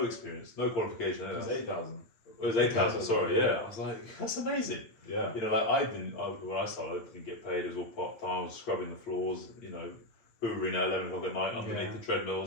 experience, no qualification." It was 8,000. It was 8,000. Sorry, yeah. I was like, "That's amazing." Yeah. When I started, I didn't get paid. It was all part time. I was scrubbing the floors, hoovering at 11 o'clock at night underneath the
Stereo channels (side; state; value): right; late; 8.9 ms